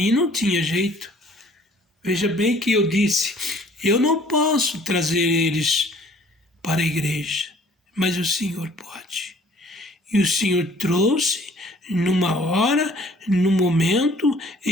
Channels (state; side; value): normal; both; correlation 0.55